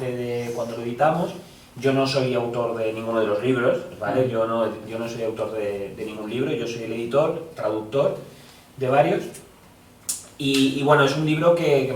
de cuando lo editamos. Yo no soy autor de ninguno de los libros, ¿vale? Yo no soy autor de ningún libro, yo soy el editor, traductor de varios. Y bueno, es un libro que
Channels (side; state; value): both; identical; correlation 1.00